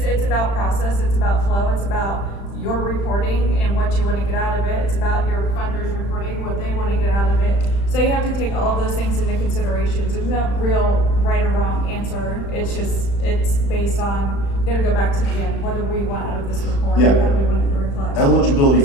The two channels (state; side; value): late; right; 35 ms